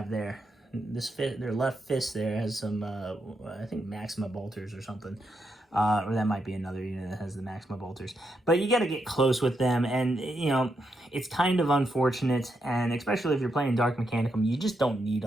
there. Their left fist there has some, I think Maxima bolters or something. Or that might be another unit that has the Maxima bolters. But you got to get close with them, and, you know, it's kind of unfortunate, and especially if you're playing Dark Mechanicum, you just don't need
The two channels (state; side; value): normal; both; correlation 0.82